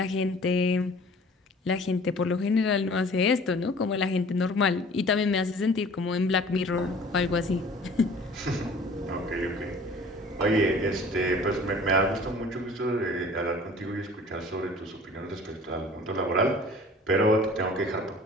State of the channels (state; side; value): normal; both; correlation 0.48